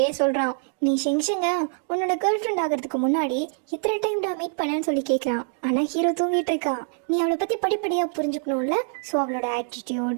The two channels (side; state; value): left; silent; 62 dB below the other